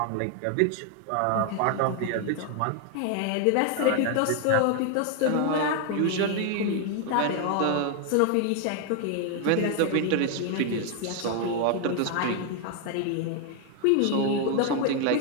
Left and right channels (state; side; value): different; both; correlation 0.01